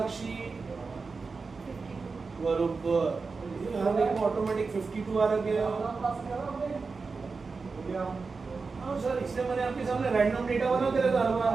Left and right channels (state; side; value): quieter; left; 4.5 dB